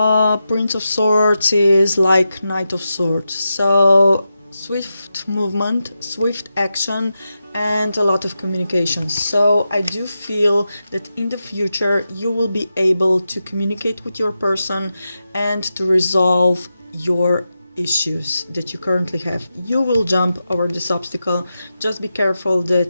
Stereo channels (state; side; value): inverted; both; correlation -0.89